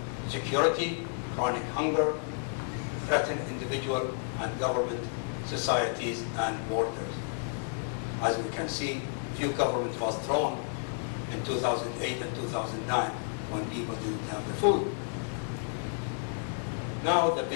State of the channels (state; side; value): silent; right; digital silence